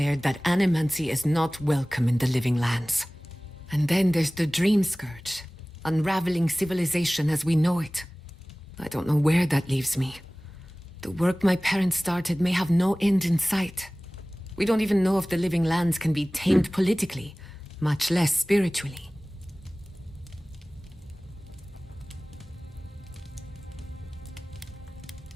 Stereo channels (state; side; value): normal; both; correlation 0.98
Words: that animancy is not welcome in the Living Lands. And then there's the Dream Scourge, unraveling civilization as we know it. I don't know where that leaves me. The work my parents started may have no end in sight. We don't even know if the Living Lands can be tamed politically, much less spiritually.